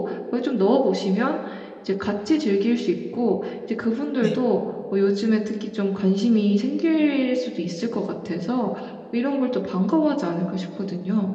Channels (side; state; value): both; identical; correlation 1.00